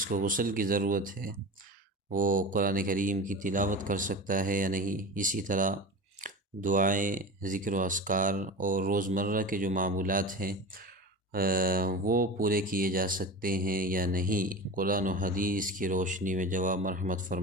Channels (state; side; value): normal; both; correlation 0.30